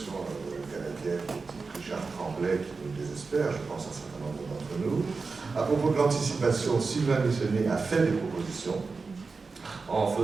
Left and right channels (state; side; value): quieter; left; 4.4 dB